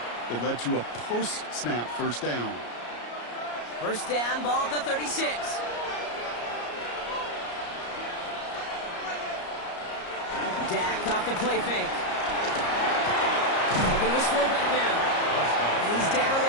that led to a post-snap first down. First down, ball at the 36. Dak off the play fake. Looking to his fullback now. And he's down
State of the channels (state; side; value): late; right; 34 ms